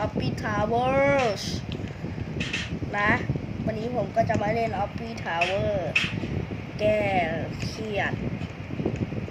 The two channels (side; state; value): both; identical; correlation 1.00